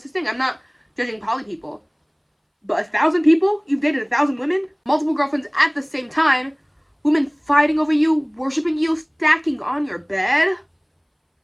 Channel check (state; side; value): identical; both; correlation 1.00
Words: his thing. I'm not judging poly people. But 1,000 people? You've dated 1,000 women? Multiple girlfriends at the same time? Women fighting over you, worshiping you, stacking on your bed?